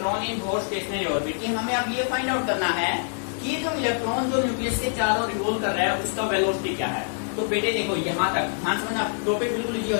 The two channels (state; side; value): silent; right; digital silence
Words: in both stationery orbit. कि हमें अब ये फाइंड आउट करना है कि जो इलेक्ट्रॉन जो न्यूक्लियस के चारों रिवॉल्व कर रहा है उसका वेलोसिटी क्या है। तो बेटे देखो यहाँ तक ध्यान समझना, टॉपिक बिल्कुल इजी हो